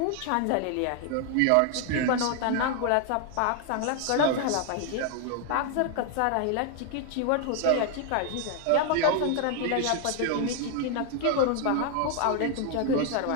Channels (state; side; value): different; both; correlation 0.00